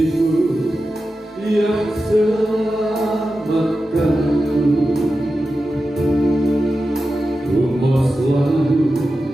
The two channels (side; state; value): both; normal; correlation 0.92